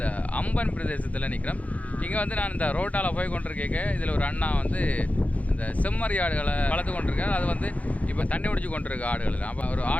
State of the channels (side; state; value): right; late; 0.069 ms